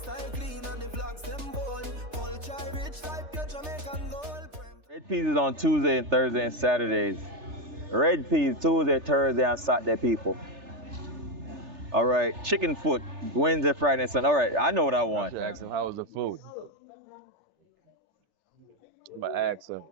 clean and the vlogs them bold. Culture rich like your Jamaican gold. Red peas is on Tuesday and Thursday and Saturdays. Red peas Tuesday, Thursday, and Saturday, people. All right, chicken foot Wednesday, Friday, and Sunday. All right, I know what I want. Ask him how was the food. I'm gonna ask him.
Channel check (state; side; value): late; left; 3.3 ms